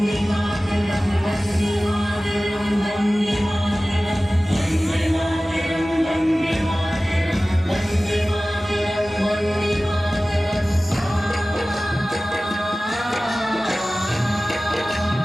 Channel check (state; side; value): normal; both; correlation 0.97